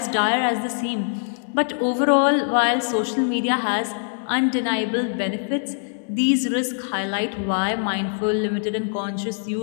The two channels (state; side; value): silent; right; digital silence